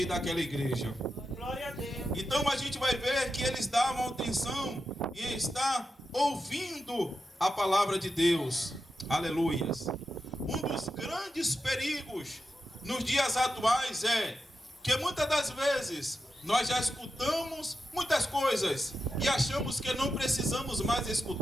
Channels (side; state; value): both; normal; correlation 0.89